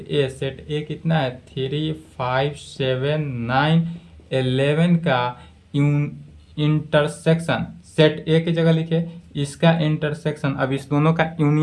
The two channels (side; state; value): both; identical; correlation 1.00